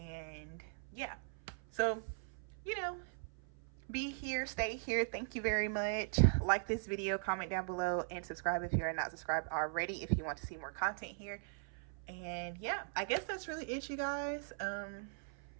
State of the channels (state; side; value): silent; left; 51 dB below the other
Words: yeah, so, you know, be here, stay here. Thank you very much. Like this video, comment down below, and subscribe if you're not subscribed already if you want to see more content here. And yeah, I guess that's really it, you guys.